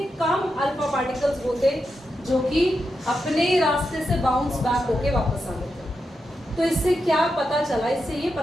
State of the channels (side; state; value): both; normal; correlation 0.87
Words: कम अल्फा पार्टिकल्स वो थे जो कि अपने रास्ते से बाउंस बैक होके वापस आ गए थे। तो इससे क्या पता चला? इससे ये